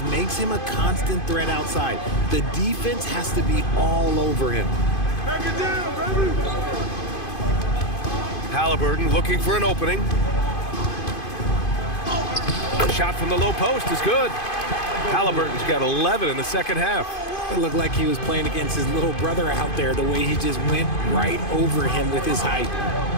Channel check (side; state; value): right; late; 2.5 ms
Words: makes him a constant threat outside. The defense has to be all over him. Back it down, baby. Halliburton looking for an opening. Shot from the low post is good. Halliburton's got 11 in the second half. It looked like he was playing against his little brother out there, the way he just went right over him with his height.